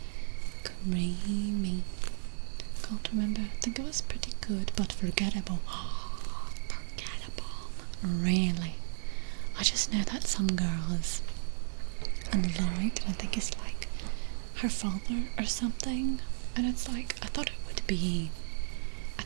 Creamy. Can't remember. I think it was pretty good, but forgettable. Forgettable. Really. I just know that some girl is unliked, and I think it's like her father or something. And it's like, I thought it would be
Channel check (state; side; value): silent; left; digital silence